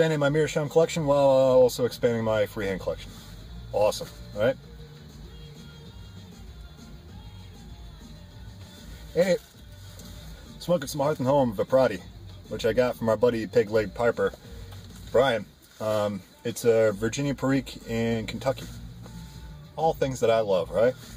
my Meerschaum collection while also expanding my freehand collection. Awesome, right? Hey, smoking some Hearth and Home Viprati, which I got from our buddy Pig Leg Piper, Brian. It's a Virginia Perique in Kentucky. All things that I love, right?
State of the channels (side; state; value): both; identical; correlation 1.00